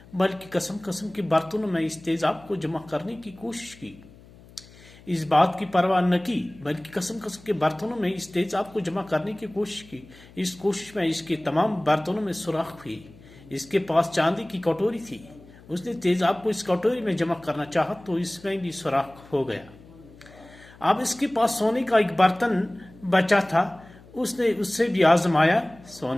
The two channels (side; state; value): left; noise; hum, 23 dB below the sound